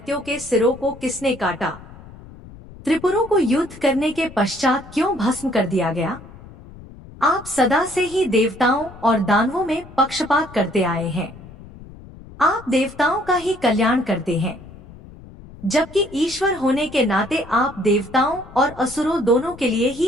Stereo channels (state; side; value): noise; left; rumble, 18 dB below the sound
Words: के सिरों को किसने काटा? त्रिपुरों को युद्ध करने के पश्चात क्यों भस्म कर दिया गया? आप सदा से ही देवताओं और दानवों में पक्षपात करते आए हैं। आप देवताओं का ही कल्याण करते हैं, जबकि ईश्वर होने के नाते आप देवताओं और असुरों दोनों के लिए